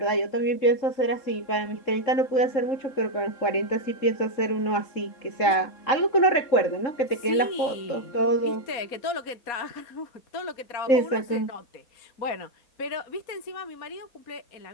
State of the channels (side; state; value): right; late; 3.7 ms